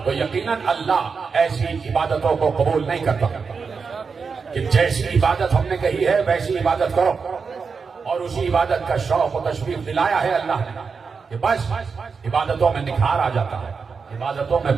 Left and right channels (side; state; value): left; quieter; 5.3 dB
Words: تو یقیناً اللہ ایسی عبادتوں کو قبول نہیں کرتا کہ جیسی عبادت ہم نے کہی ہے ویسی عبادت کرو. اور اسی عبادت کا شوق و تشویق دلایا ہے اللہ نے کہ بس عبادتوں میں نکھار آ جاتا ہے, عبادتوں میں